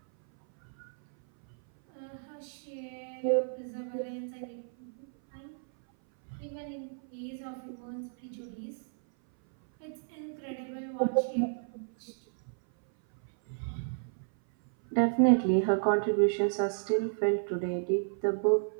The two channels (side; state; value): left; silent; 56 dB below the other